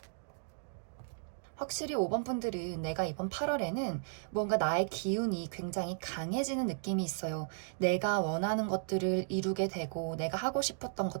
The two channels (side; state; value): left; silent; digital silence